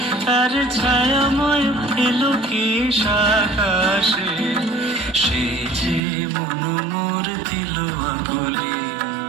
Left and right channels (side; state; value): left; drops out; at 6.0 s